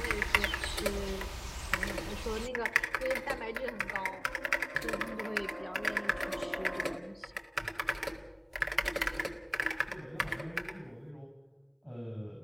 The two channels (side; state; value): both; identical; correlation 1.00